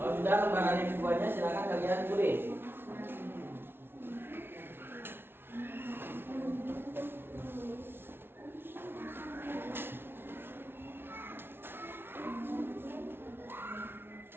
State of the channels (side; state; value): left; late; 0.11 ms